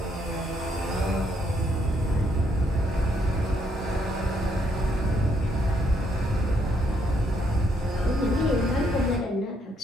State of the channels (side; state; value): both; normal; correlation 0.73